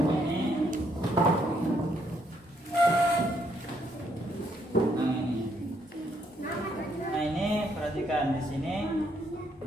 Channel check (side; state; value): both; normal; correlation 0.72